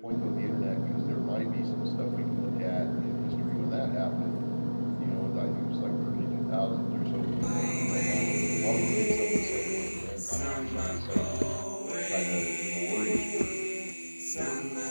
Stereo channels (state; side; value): inverted; both; correlation -1.00